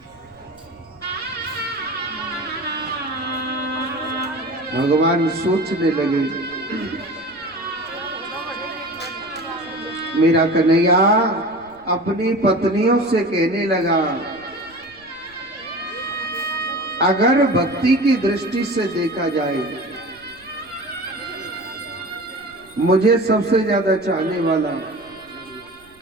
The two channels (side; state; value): right; noise; rumble, 29 dB below the sound